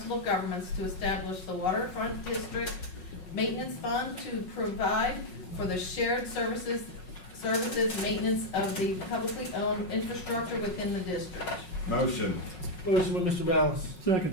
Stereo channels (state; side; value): late; right; 5.5 ms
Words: of Governments to establish the Waterfront District Maintenance Fund to provide for the shared services maintenance of the publicly owned infrastructure within the district. Motion. Motion by Mr. Ballas.